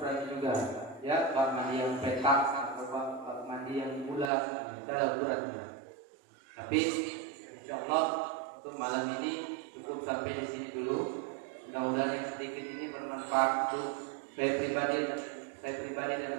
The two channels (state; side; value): drops out; left; at 4.3 s